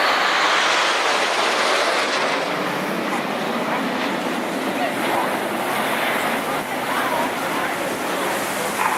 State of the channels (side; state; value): both; identical; correlation 1.00